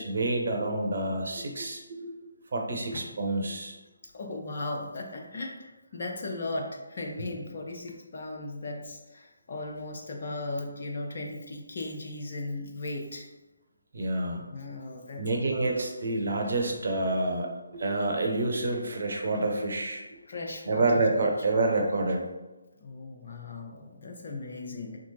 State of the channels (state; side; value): inverted; both; correlation -0.72